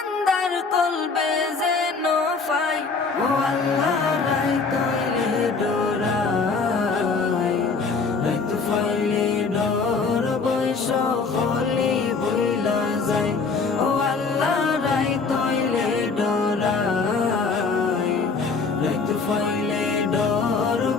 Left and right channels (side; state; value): right; quieter; 4.6 dB